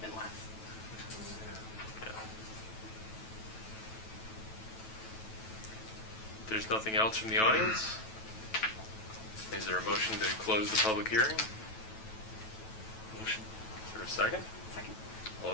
less. there's nothing else from the audience, is there a motion to close the public hearing? Motion. Is there a second? Second. All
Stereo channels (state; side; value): late; right; 9.2 ms